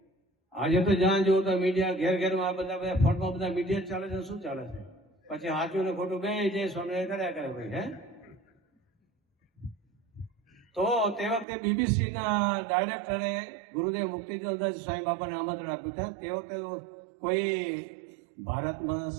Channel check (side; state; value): left; drops out; at 11.5 s